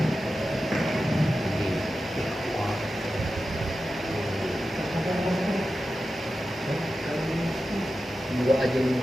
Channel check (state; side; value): normal; both; correlation 0.92